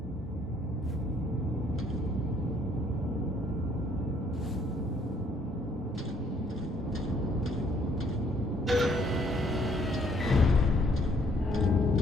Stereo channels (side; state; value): both; normal; correlation 0.65